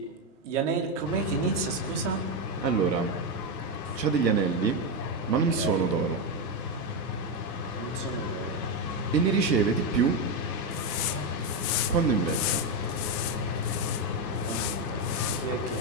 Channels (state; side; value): normal; both; correlation 0.07